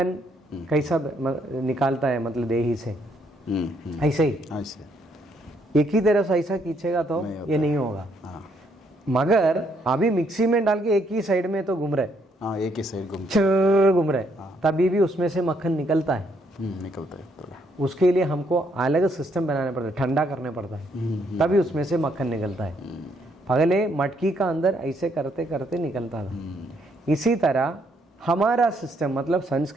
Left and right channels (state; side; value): normal; both; correlation 0.71